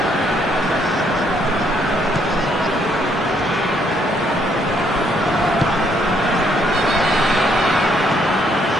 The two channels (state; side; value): normal; both; correlation 0.70